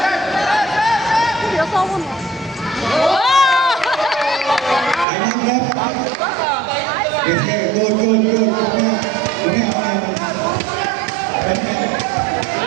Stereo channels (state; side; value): drops out; left; at 5.1 s